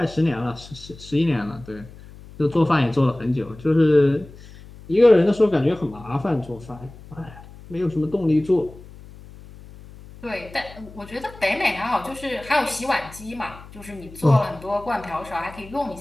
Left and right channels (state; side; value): noise; left; hum, 19 dB below the sound